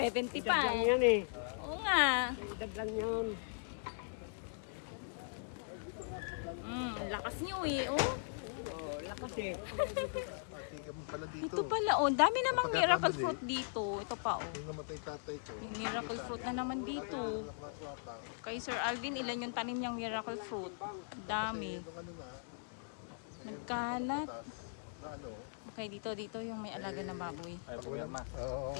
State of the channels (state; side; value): silent; right; digital silence